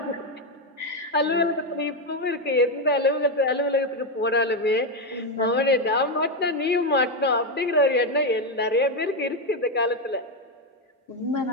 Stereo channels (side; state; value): both; normal; correlation 0.07